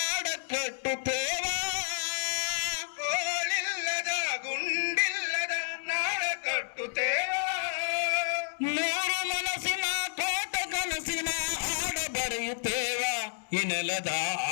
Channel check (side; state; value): right; silent; digital silence